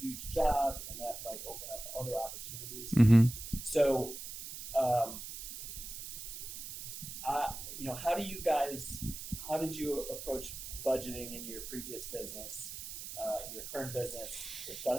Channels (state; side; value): noise; right; hiss, 9 dB below the sound